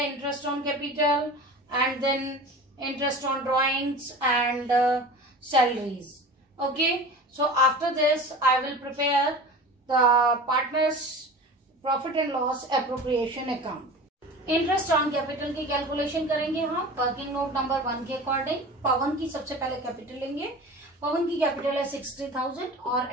on capital and then interest on drawings and salaries. Okay. So after this, I will prepare the partners profit and loss appropriation account. Interest on capital की calculation करेंगे हम working note number 1 के according. पवन की सबसे पहले capital लेंगे. पवन की capital है 60,000 और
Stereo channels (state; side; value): normal; both; correlation 0.36